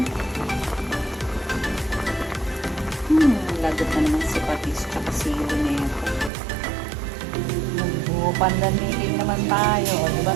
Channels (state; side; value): drops out; left; at 6.3 s